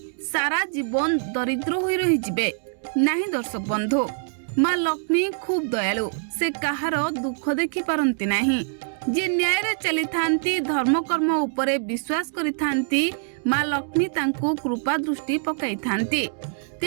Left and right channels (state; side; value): silent; left; digital silence